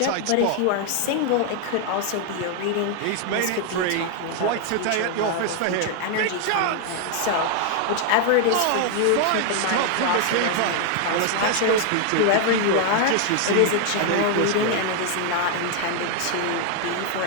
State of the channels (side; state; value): both; different; correlation 0.00